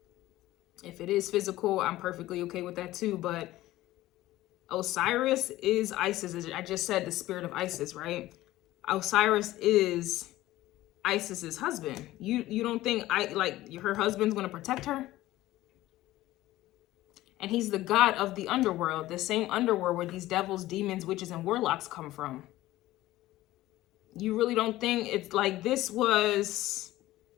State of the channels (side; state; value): right; quieter; 16.2 dB